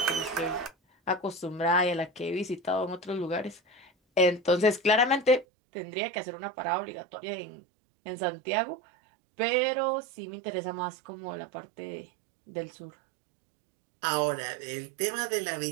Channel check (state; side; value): drops out; left; at 5.5 s